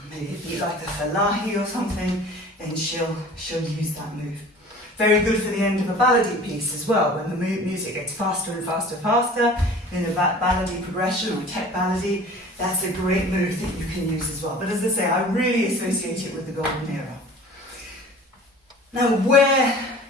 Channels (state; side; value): normal; both; correlation 0.44